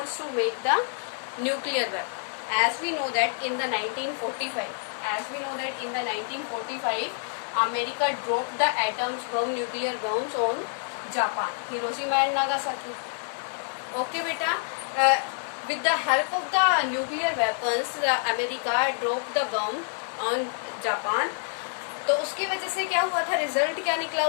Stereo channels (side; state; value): right; silent; digital silence